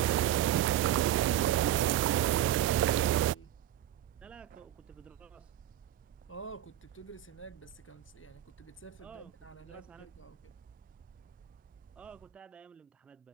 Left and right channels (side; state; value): left; quieter; 12.3 dB